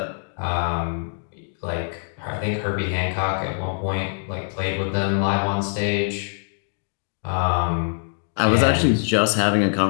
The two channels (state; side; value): silent; right; digital silence